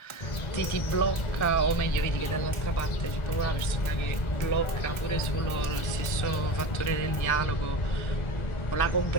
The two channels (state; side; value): late; right; 1.4 ms